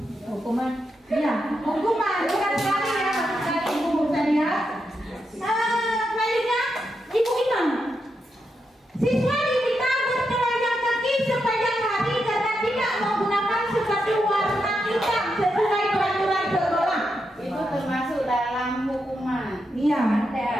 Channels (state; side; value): normal; both; correlation 0.84